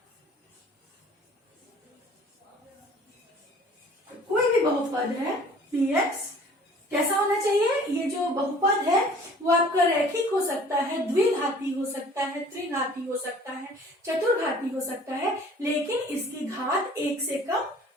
कोई भी बहुपद है px, कैसा होना चाहिए, ये जो बहुपद है वो आपका रैखिक हो सकता है, द्विघाती हो सकता है, त्रिघाती हो सकता है, चतुर्घाती हो सकता है, लेकिन इसकी घात 1 से कम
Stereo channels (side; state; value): both; normal; correlation 0.50